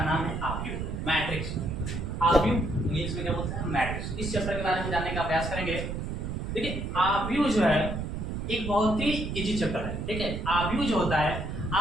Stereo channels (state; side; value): noise; right; rumble, 4 dB below the sound